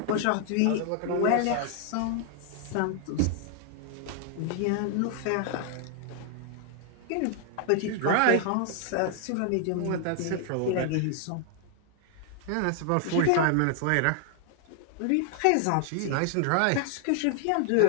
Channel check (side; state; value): both; different; correlation 0.00